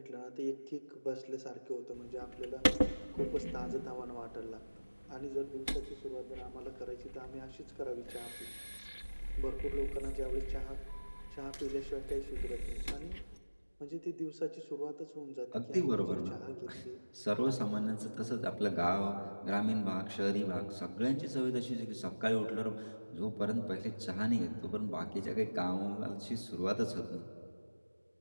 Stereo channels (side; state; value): both; inverted; correlation -1.00